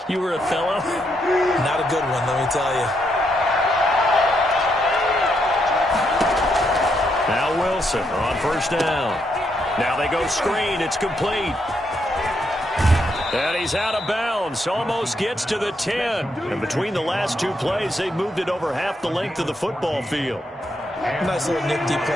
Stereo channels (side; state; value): both; normal; correlation 0.78